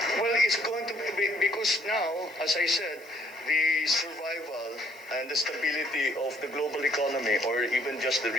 Well, it's going to be, because now, as I said, the survival and the stability of the global economy, or even just the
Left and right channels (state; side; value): noise; right; hiss, 24 dB below the sound